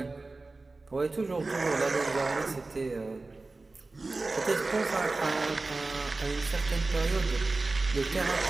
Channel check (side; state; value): left; quieter; 3.4 dB